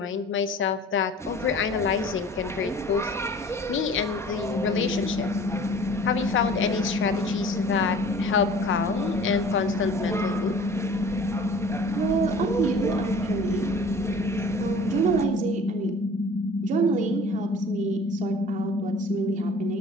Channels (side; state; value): both; normal; correlation 0.46